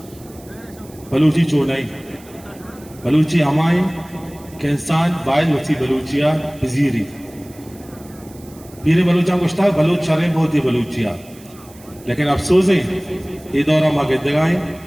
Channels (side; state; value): right; noise; hiss, 24 dB below the sound